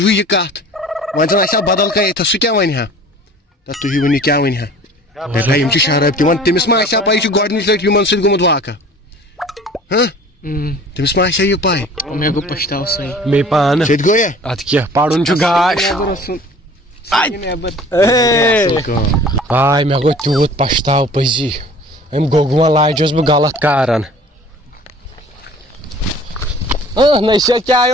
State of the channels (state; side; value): normal; both; correlation 0.47